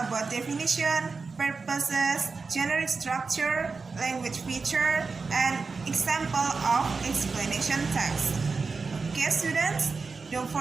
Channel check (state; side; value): quieter; left; 4.5 dB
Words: about definition, purposes, generic structure, language feature, and example of explanation text. Okay, students, don't